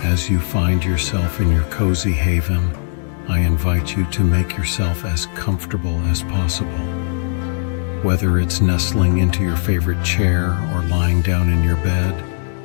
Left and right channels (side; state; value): right; silent; digital silence